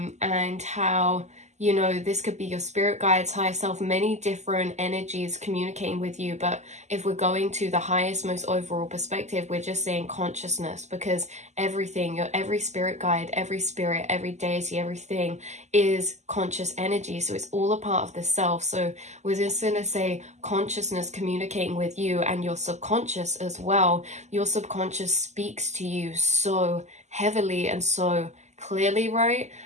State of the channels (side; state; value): left; late; 0.33 ms